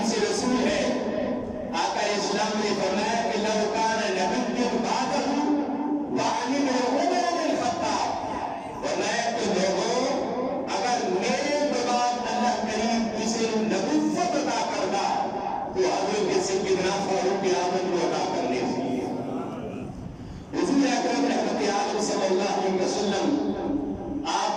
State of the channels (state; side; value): identical; both; correlation 1.00